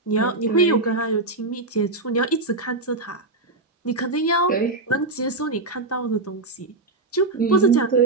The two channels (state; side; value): quieter; left; 3.2 dB